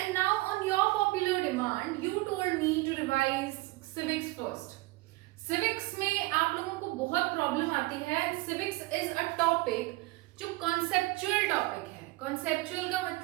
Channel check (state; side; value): quieter; left; 21.5 dB